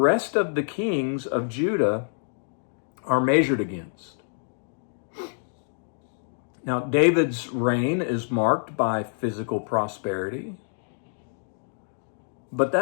of the kings of Judah are measured against. Now, David's reign is marked by physical prosperity, but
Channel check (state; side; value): silent; right; digital silence